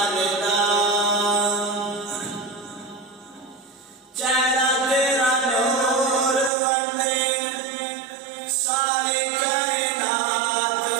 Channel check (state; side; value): drops out; left; at 6.5 s